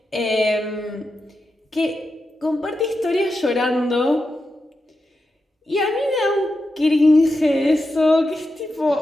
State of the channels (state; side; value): normal; both; correlation 0.88